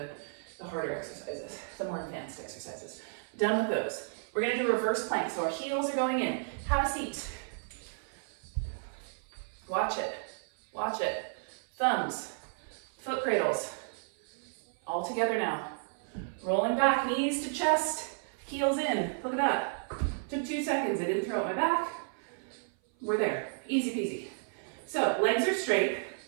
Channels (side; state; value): left; silent; 56 dB below the other